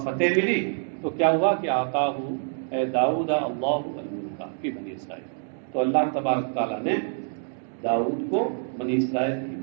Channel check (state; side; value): silent; left; 61 dB below the other